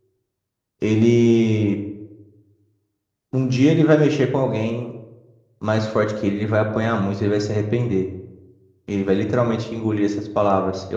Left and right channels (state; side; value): identical; both; correlation 1.00